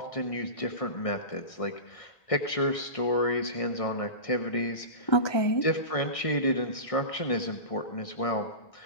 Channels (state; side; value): late; right; 1.6 ms